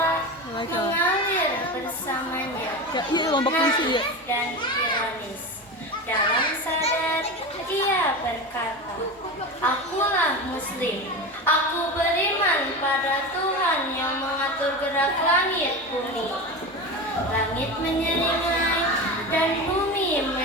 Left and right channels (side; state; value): both; normal; correlation 0.25